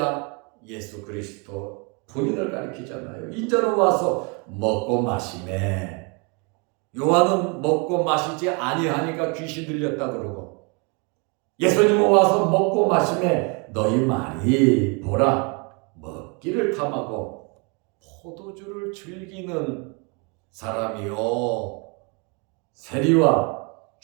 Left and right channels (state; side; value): quieter; left; 33.2 dB